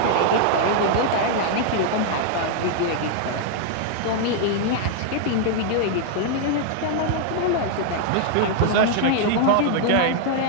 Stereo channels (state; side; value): different; both; correlation -0.01